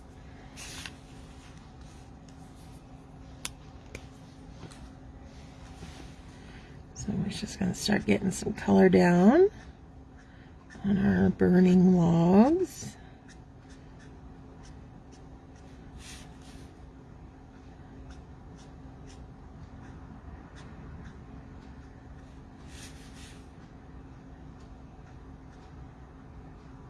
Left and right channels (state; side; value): identical; both; correlation 1.00